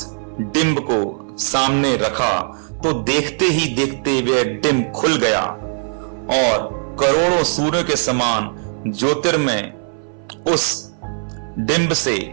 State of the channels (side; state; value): left; silent; 59 dB below the other